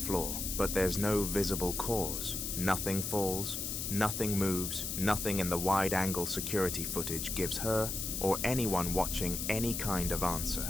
But there's no visible cause. Nothing falls, nothing moves, nothing in the wide-angle security footage gives her or anyone watching any kind of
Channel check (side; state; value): left; noise; hiss, 3 dB below the sound